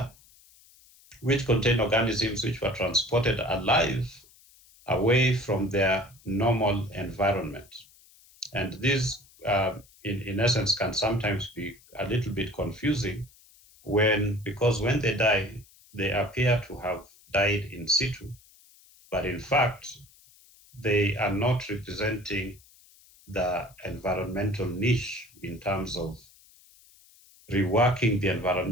which contain organisms which were transported alive away from their normal environment. And these, in essence, can sometimes be a little bit confusing because when they die, they appear to have died in situ, but in fact, they are not representing the environmental niche in terms of reworking the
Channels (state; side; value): noise; left; hiss, 27 dB below the sound